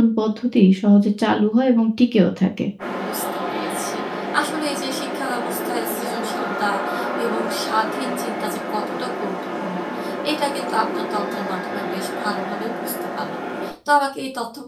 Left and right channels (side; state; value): both; identical; correlation 1.00